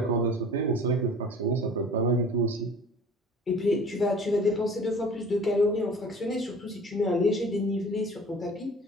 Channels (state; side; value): normal; both; correlation 0.46